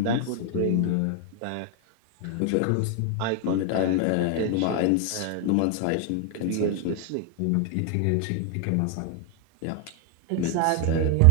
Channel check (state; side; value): different; both; correlation 0.00